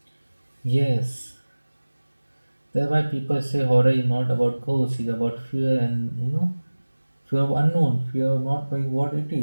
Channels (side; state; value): both; inverted; correlation -1.00